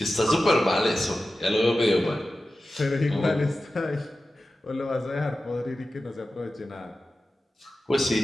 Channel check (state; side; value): normal; both; correlation 0.94